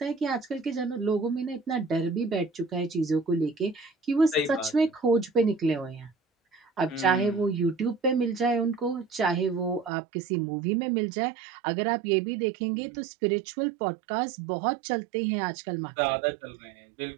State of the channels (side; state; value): left; drops out; at 9.9 s